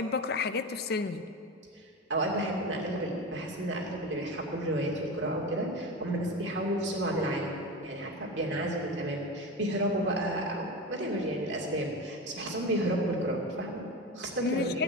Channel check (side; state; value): both; normal; correlation 0.24